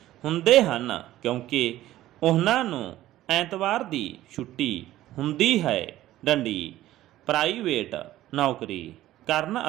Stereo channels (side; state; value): left; quieter; 14.6 dB